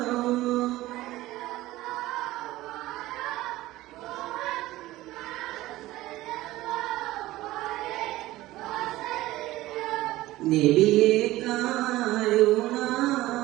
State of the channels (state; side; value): quieter; left; 17.0 dB